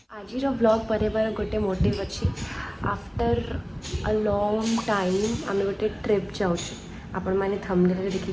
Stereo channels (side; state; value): both; identical; correlation 1.00